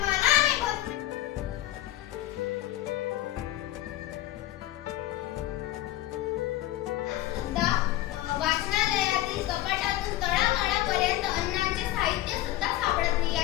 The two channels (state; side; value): quieter; right; 15.3 dB